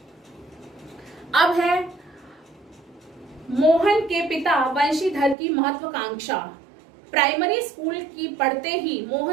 अब है मोहन के पिता वंशीधर की महत्वाकांक्षा। प्राइमरी स्कूल की पढ़ते ही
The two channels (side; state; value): left; drops out; at 5.4 s